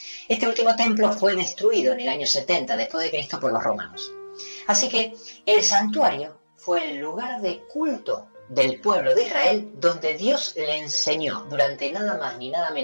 Este último templo fue destruido en el año 70 después de Cristo por los romanos. Así que el santuario fue el lugar de culto del pueblo de Israel donde Dios le enseñó durante nada más ni nada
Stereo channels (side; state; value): both; inverted; correlation -1.00